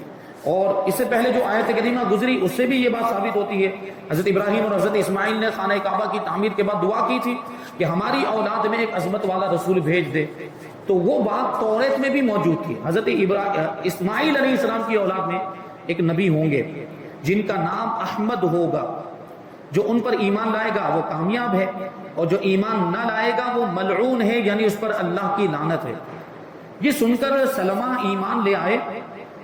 اور اس سے پہلے جو آیت کریمہ گزری اس سے بھی یہ بات ثابت ہوتی ہے۔ حضرت ابراہیم اور حضرت اسماعیل نے خانہ کعبہ کی تعمیر کے بعد دعا کی تھی کہ ہماری اولاد میں ایک عظمت والا رسول بھیج دے، تو وہ بات توریت میں بھی موجود تھی۔ حضرت اسماعیل علیہ السلام کی اولاد میں ایک نبی ہوں گے جن کا نام احمد ہوگا، جو ان پر ایمان لائے گا وہ کامیاب ہے، اور جو ایمان نہ لائے گا وہ ملعون ہے، یعنی اس پر اللہ کی لعنت ہے۔ یہ سن کر سلمہ ایمان لے آئے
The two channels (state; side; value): identical; both; correlation 1.00